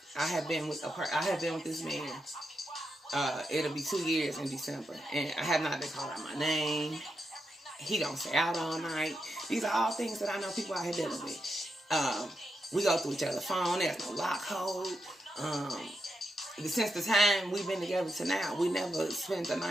I have been with this man. It'll be 2 years in December. And I have not been called out my name. He don't stay out all night. These are all things that I know people out here dealing with. We go through each other's phone. There's no lock code. Since the time we've been together to now, we never spent the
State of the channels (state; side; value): normal; both; correlation 0.85